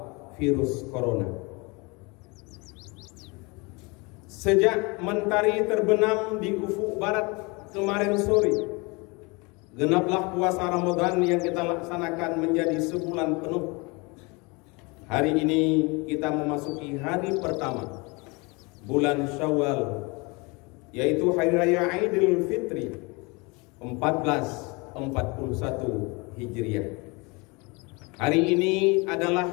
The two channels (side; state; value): right; quieter; 27.8 dB